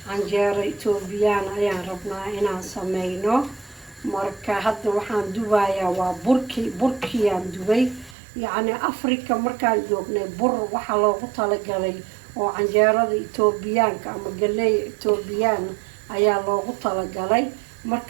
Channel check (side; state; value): left; drops out; at 8.2 s